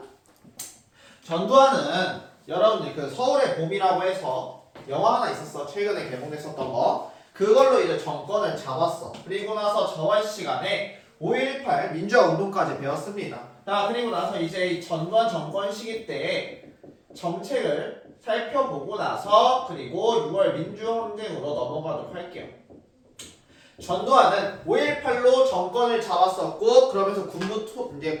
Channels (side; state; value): both; identical; correlation 1.00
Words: 전두환은 여러분들 그 서울의 봄이라고 해서 영화 하나 있었어. 최근에 개봉됐었던 거. 그걸로 이제 정권을 잡았어. 그리고 나서 저번 시간에 5.18 민주화 운동까지 배웠습니다. 자, 그리고 나서 이제 이 전두환 정권 시기 때 정책을 살펴보고 나서 그리고 6월 민주항쟁으로 넘어가도록 할게요. 전두환은 5.18로 정권을 잡았었고 그러면서 이제